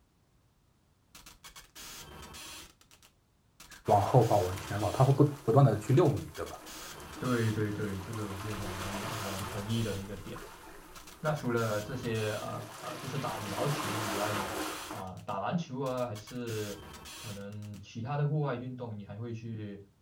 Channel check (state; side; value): identical; both; correlation 1.00